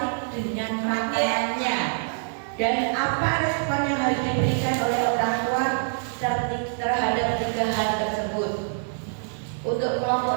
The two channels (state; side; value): silent; left; digital silence